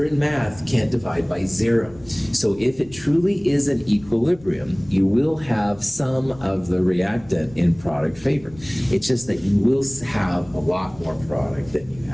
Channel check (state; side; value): noise; left; rumble, 22 dB below the sound